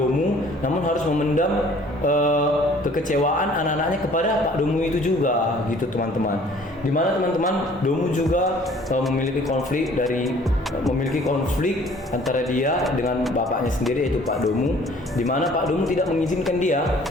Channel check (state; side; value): normal; both; correlation 0.54